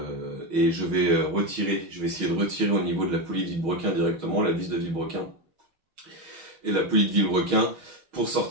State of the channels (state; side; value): late; left; 6.3 ms